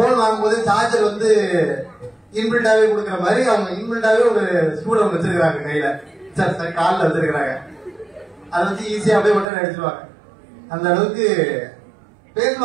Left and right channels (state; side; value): drops out; left; at 9.5 s